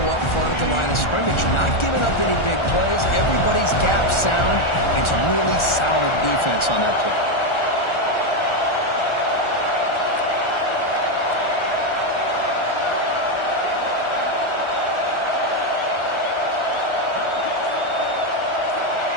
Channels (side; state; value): right; late; 1.4 ms